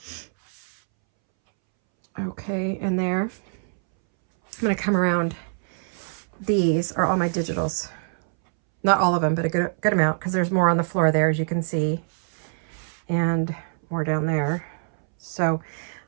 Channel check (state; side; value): silent; left; 62 dB below the other